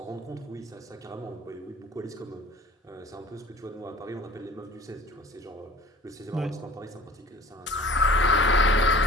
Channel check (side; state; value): both; normal; correlation 0.44